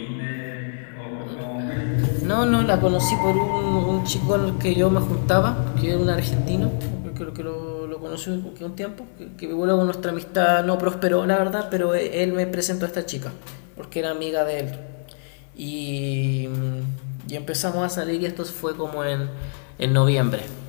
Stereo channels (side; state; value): right; silent; 63 dB below the other